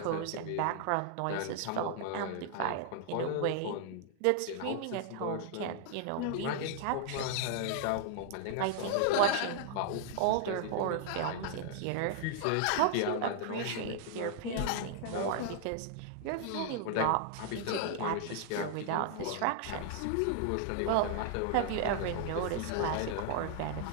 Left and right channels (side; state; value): both; different; correlation 0.00